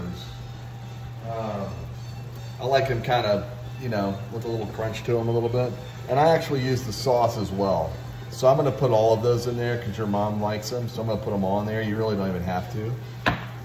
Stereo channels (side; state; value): both; identical; correlation 1.00